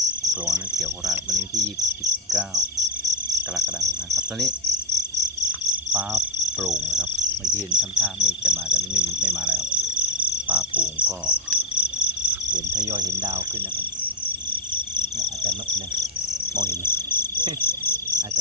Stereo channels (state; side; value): normal; both; correlation 0.08